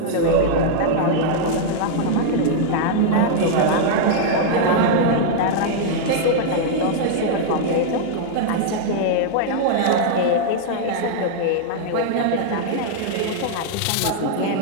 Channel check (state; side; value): different; both; correlation -0.01